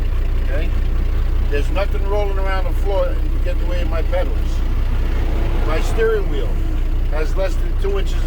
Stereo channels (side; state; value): both; identical; correlation 1.00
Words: Okay? There's nothing rolling around the floor to get in the way of my pedals. My steering wheel has less than 2 inches